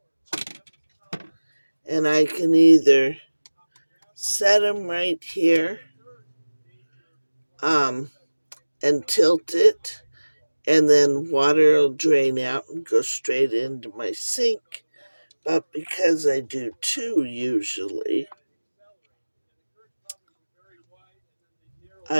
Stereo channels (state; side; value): inverted; both; correlation -1.00